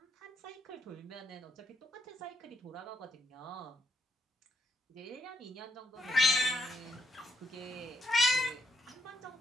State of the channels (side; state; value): both; normal; correlation 0.78